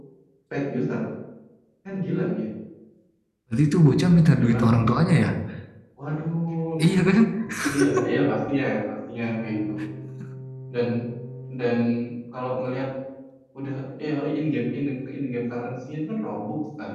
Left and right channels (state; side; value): identical; both; correlation 1.00